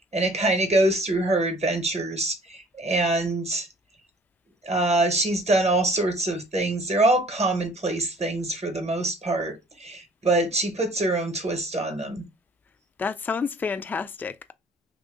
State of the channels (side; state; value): both; normal; correlation 0.53